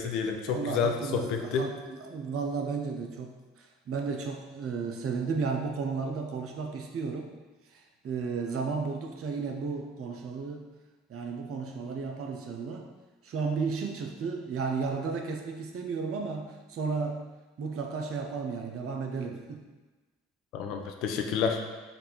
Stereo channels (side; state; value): both; normal; correlation 0.45